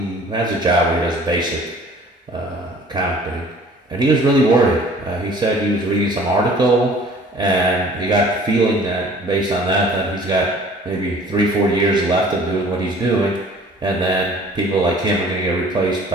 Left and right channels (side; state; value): both; normal; correlation 0.51